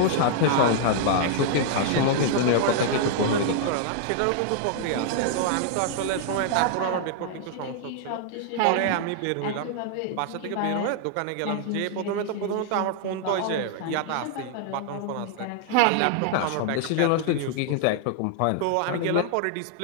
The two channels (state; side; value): different; both; correlation 0.00